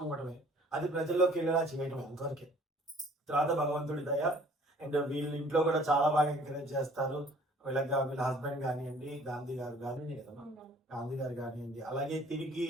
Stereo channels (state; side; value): normal; both; correlation 0.54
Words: ఇవ్వడమే, అది ప్రజల్లోకి వెళ్ళేలా చేయడమే అంతవరకే. తర్వాత భగవంతుడి దయ. అండ్ వీళ్ళ ఇంట్లో కూడా చాలా బాగా ఎంకరేజ్ చేస్తారు. వీళ్ళ హస్బెండ్ కానివ్వండి, గాంధీ గారు కానివ్వండి, అలాగే తిరిగి